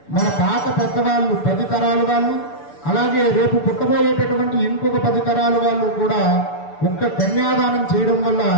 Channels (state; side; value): late; right; 6.9 ms